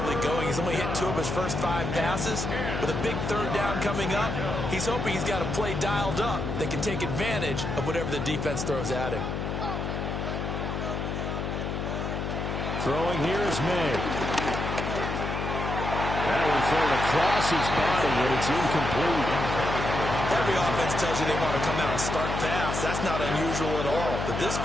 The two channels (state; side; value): noise; left; hum, 3 dB below the sound